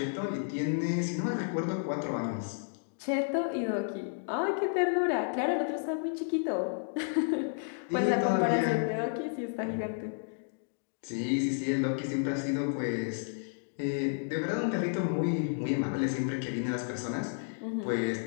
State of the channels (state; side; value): silent; right; digital silence